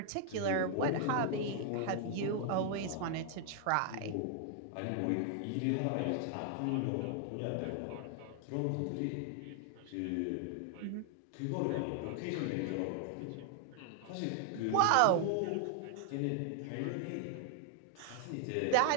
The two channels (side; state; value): both; different; correlation 0.00